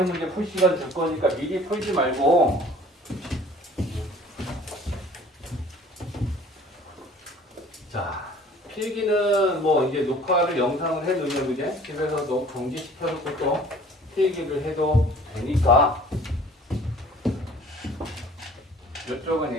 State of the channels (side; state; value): both; normal; correlation 0.51